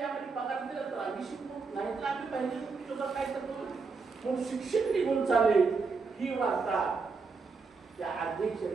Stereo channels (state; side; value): quieter; left; 4.7 dB